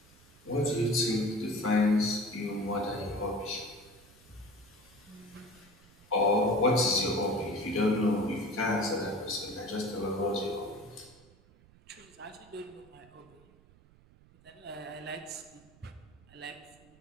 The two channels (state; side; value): noise; right; rumble, 26 dB below the sound